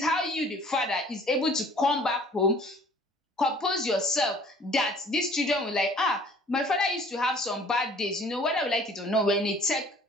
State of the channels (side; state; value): both; normal; correlation 0.53